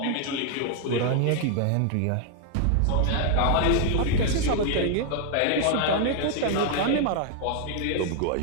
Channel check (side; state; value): both; different; correlation 0.00